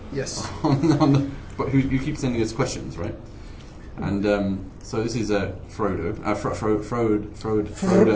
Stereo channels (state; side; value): identical; both; correlation 1.00